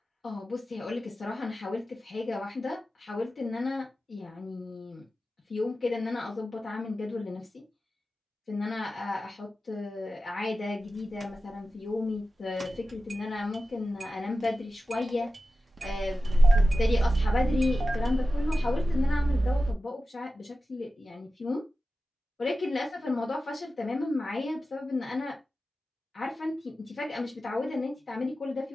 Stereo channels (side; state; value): both; normal; correlation 0.93